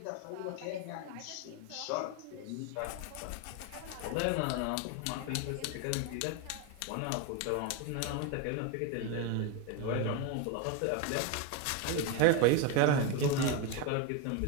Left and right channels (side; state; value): both; different; correlation 0.02